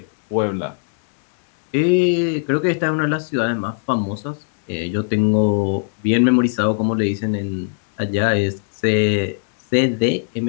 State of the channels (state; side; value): silent; right; 66 dB below the other